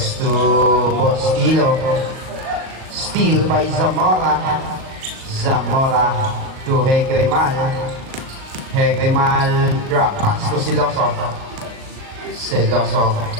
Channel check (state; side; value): late; left; 38 ms